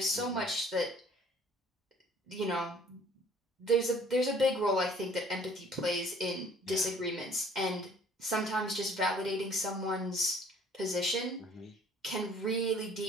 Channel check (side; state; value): both; normal; correlation 0.55